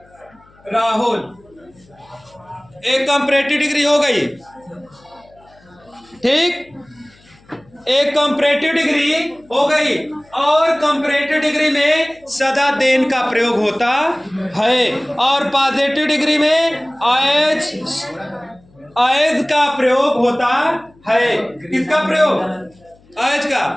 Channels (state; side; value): noise; left; hum, 30 dB below the sound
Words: राहुल। एक कंपैरेटिव डिग्री हो गई, ठीक। एक कंपैरेटिव डिग्री हो गई। और कंपैरेटिव डिग्री में सदा देन का प्रयोग होता है और पॉजिटिव डिग्री में एज का प्रयोग होता है। किसका प्रयोग? एज